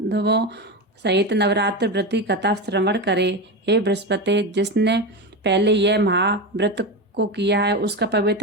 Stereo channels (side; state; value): both; normal; correlation 0.18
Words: सहित नवरात्र व्रत की कथा श्रवण करे। हे बृहस्पति, जिसने पहले यह महाव्रत को किया है, उसका